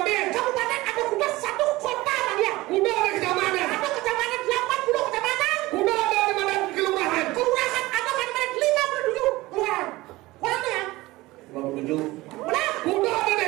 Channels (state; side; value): quieter; left; 19.6 dB